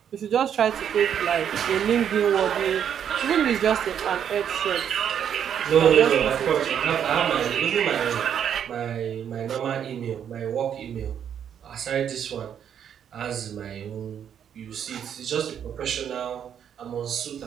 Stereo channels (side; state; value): left; quieter; 8.8 dB